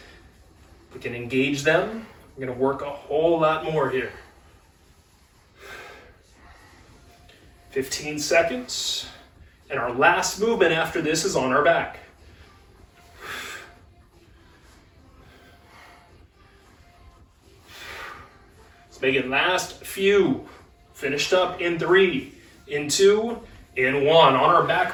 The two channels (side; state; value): both; identical; correlation 1.00